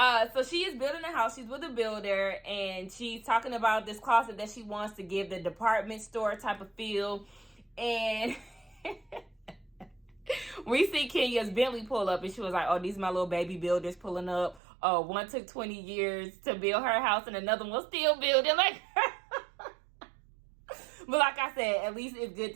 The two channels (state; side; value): drops out; left; at 14.6 s